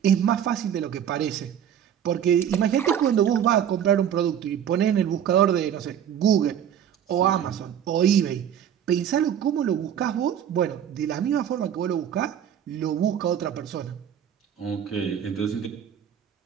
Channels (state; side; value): quieter; left; 9.4 dB